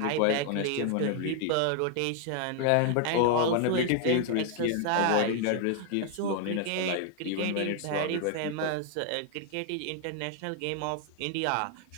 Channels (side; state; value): both; different; correlation 0.00